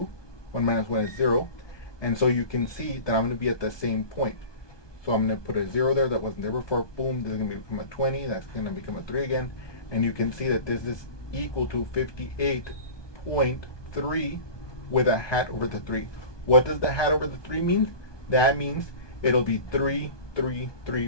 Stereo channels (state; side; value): late; right; 1.2 ms